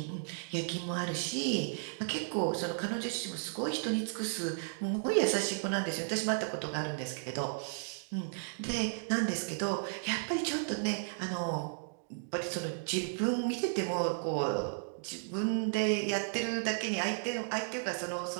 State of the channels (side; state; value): left; silent; digital silence